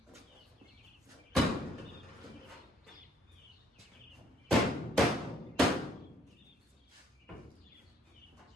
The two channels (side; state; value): both; normal; correlation 0.64